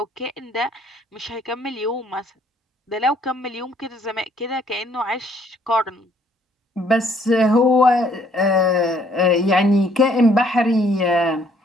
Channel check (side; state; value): both; normal; correlation 0.63